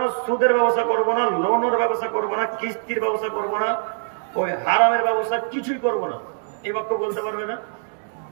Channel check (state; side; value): silent; left; digital silence